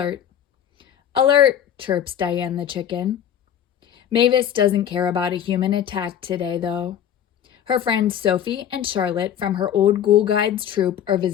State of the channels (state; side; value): quieter; right; 9.8 dB